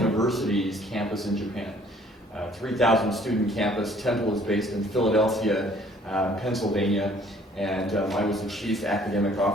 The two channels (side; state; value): both; normal; correlation 0.58